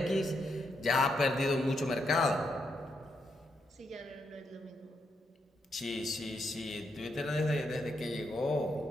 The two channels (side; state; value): both; normal; correlation 0.80